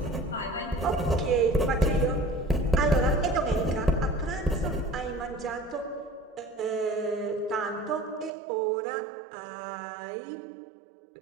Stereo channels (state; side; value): drops out; left; at 8.3 s